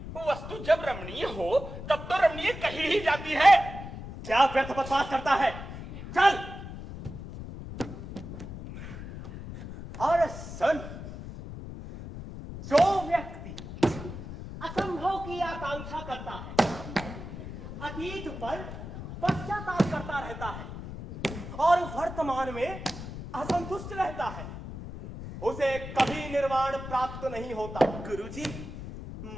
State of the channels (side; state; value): left; noise; rumble, 10 dB below the sound